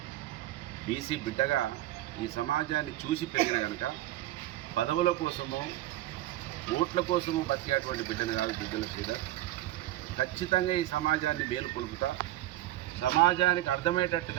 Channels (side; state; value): left; quieter; 14.8 dB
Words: బీసీ బిడ్డగా ఈ సమాజాన్ని చూసి పెరిగిన కనుక పదవుల కోసమో ఓట్ల కోసమో బతికేటువంటి బిడ్డను కాదు దుద్దిల్ల శ్రీధర్. ఖచ్చితంగా ఈ సమాజాన్ని మేలుకొలుపుతా, సమాజానికి